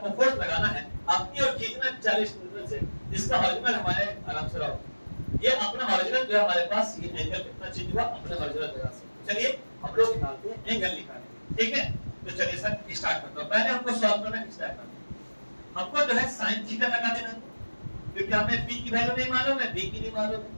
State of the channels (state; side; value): inverted; both; correlation -1.00